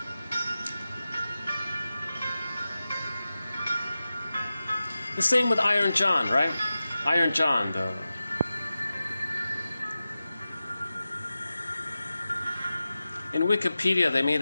The same with Iron John, right? Iron John, in Wikipedia, they made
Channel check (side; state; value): both; inverted; correlation -0.94